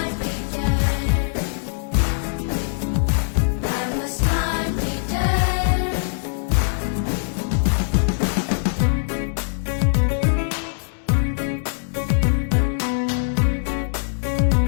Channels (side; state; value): right; silent; 64 dB below the other